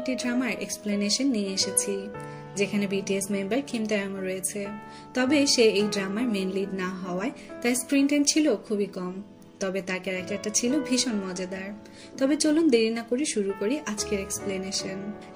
ড্রামার এক্সপ্লেনেশন নিয়ে এসেছি, যেখানে বিটিএস মেম্বার কিম তাeyong রয়েছে। তবে সে এই ড্রামার মেন লিড না হওয়ায় তার স্ক্রিন টাইম ছিল খুবই কম, তবে তার ক্যারেক্টারটা ছিল ভীষণ মজাদার। তবে চলুন দেরি না করে শুরু করি আজকের এক্সপ্লেনেশন।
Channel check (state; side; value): identical; both; correlation 1.00